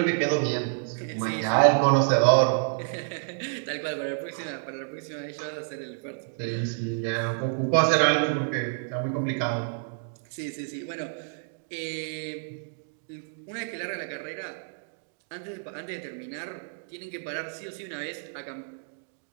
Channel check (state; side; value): silent; left; digital silence